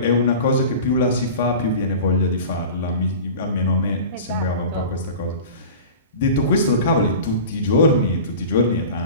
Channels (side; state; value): both; inverted; correlation -0.36